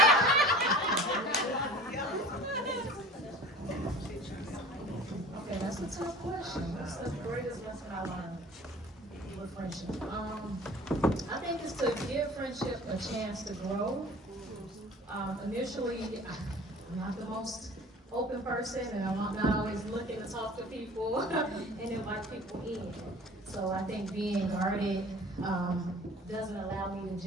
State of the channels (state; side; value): normal; both; correlation 0.44